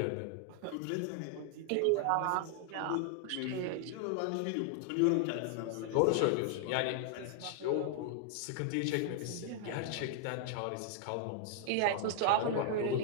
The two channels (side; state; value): both; different; correlation 0.00